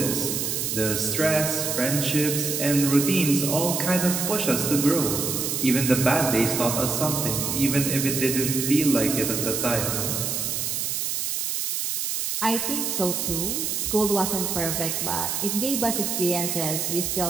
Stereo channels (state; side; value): noise; right; hiss, 1 dB below the sound